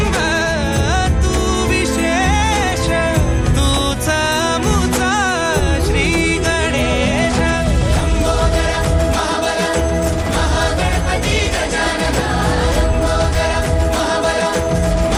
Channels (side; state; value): both; identical; correlation 1.00